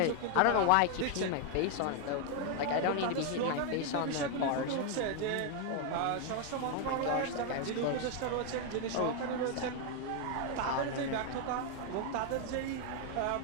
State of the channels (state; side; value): different; both; correlation 0.01